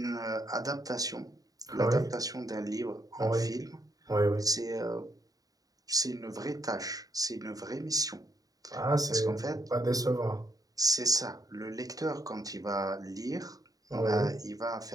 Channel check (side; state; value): left; late; 0.18 ms